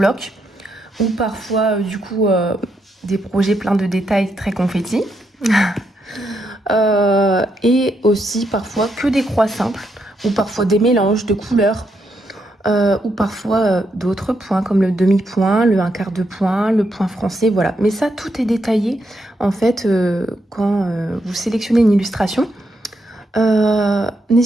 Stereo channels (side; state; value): both; normal; correlation 0.80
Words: ou parfois du coup des projets pleins de détails très confettis. Et aussi parfois que des croix simples ou parfois des mélanges de couleurs ou parfois d'autres points comme le demi-point, le un quart de point, le point français, voilà. Mais ça, tout est détaillé en fait quand vous sélectionnez une illustration.